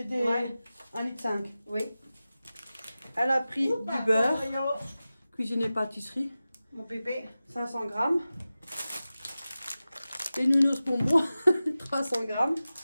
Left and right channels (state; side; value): inverted; both; correlation -0.95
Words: des Ouais. 1,5 litre. Oui. Elle a pris Oh, du pardon, beurre. Mario. Cuisine et pâtisserie. Mon bébé. 500 grammes. Des nounours bonbons. 300 grammes.